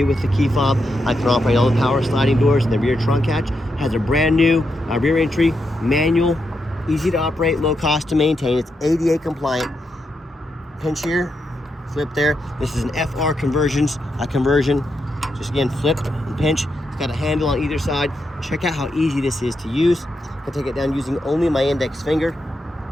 it with the key fob. I can operate all the power sliding doors and the rear trunk hatch. Has a brand new rear entry, manual, easy to operate, low cost to maintain. It's ADA compliant. Pinch here, flip there. This is an FR conversion. Just again, flip and pinch. It's got a handle on either side. Check out how easy this is to use. I can take it down using only my index finger.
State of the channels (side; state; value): both; normal; correlation 0.84